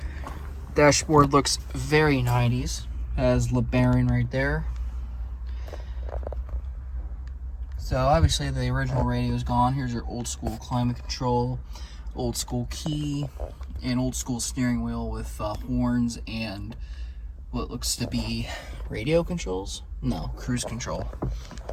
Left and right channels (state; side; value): identical; both; correlation 1.00